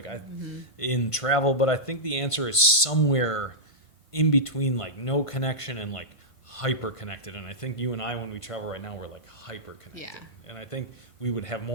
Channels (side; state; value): right; late; 1.5 ms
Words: in travel, but I think the answer is somewhere in between like no connection and like hyper connected. And I think you and I, when we travel right now, we're like hyper connected. Yeah. And I think we would have